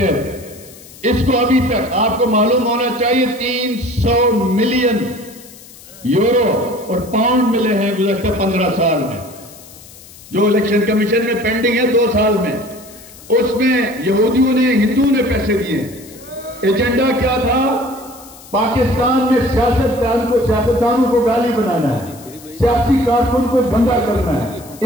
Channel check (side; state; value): left; noise; hiss, 20 dB below the sound